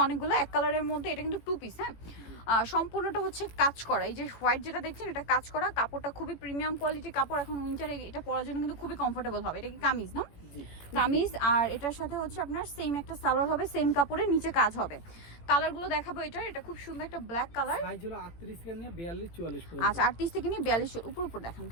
অনেকগুলো। এক কালারের মধ্যে এটা কিন্তু টু পিস, হ্যাঁ। সম্পূর্ণটা কাজ করা। এই যে হোয়াইট যেটা দেখছেন, এটা কাজ করা। কাপড়টা খুবই প্রিমিয়াম কোয়ালিটির কাপড়। এখন উইন্টারে এটা পরার জন্য কিন্তু খুবই কমফোর্টেবল হবে। এটা কি কামিজ না? কামিজ। আর এটার সাথে আপনার সেম একটা সালোয়ার হবে, সেম কাপড়ের নিচে কাজ হবে। কালারগুলো দেখাবো। এটা খুব সুন্দর একটা ব্ল্যাক কালার। সাইজ হলো 38 থেকে নিয়ে 42 44 পর্যন্ত। আচ্ছা, 38 থেকে নিয়ে 42 উপর দেখান।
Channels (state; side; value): late; right; 18 ms